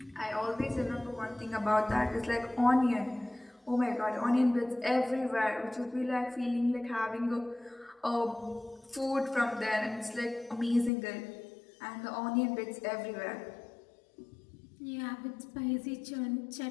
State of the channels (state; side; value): drops out; right; at 10.9 s